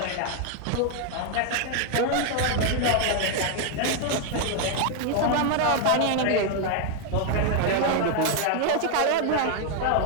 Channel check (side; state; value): both; different; correlation 0.00